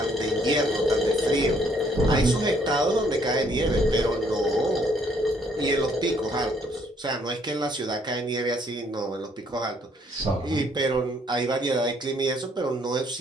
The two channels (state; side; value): normal; both; correlation 0.66